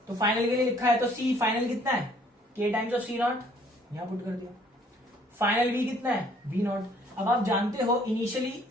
तो फाइनल के लिए लिखा है तो C फाइनल कितना है, K टाइम्स ऑफ C0, यहां पुट कर दिया। फाइनल V कितना है, V0। अब आप जानते हो इनिशियली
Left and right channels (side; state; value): both; normal; correlation 0.60